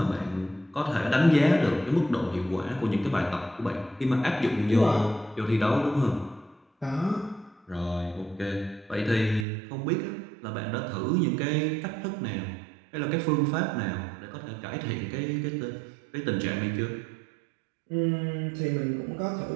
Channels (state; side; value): drops out; left; at 9.5 s